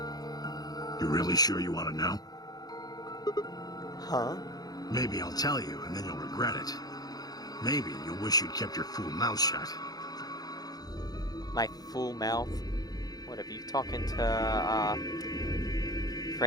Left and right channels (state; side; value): late; right; 0.19 ms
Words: You really sure you want to know? Huh? Maybe I'll tell you, and then you'll regret it. Maybe you'll wish you'd kept your fool mouth shut. My fool mouth? What, have you talking to,